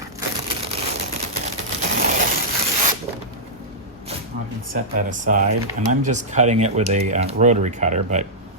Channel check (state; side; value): normal; both; correlation -0.10